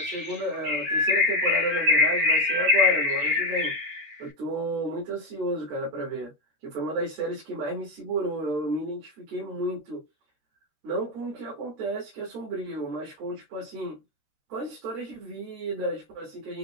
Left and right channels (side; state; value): left; late; 13 ms